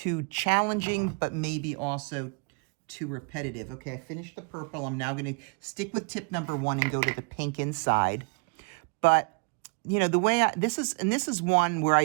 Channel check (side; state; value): left; quieter; 33.0 dB